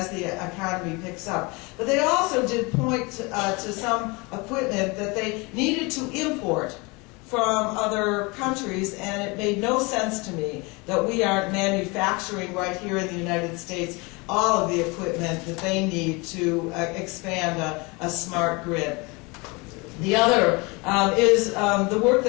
the economy picks up. But they also did point to some equipment that they needed to import from other countries, and it made no sense to me that we aren't manufacturing right here in the United States all of the equipment that they need to expand a smart grid. The other is the work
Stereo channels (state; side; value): quieter; right; 27.0 dB